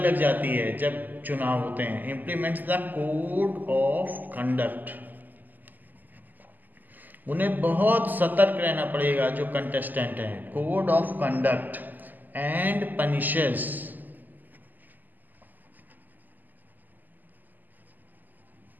जाती है जब चुनाव होते हैं. Implements the code of conduct. उन्हें बहुत सतर्क रहना पड़ेगा जो कंटेस्टेंट हैं. Code of conduct and punishes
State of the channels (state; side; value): late; left; 0.085 ms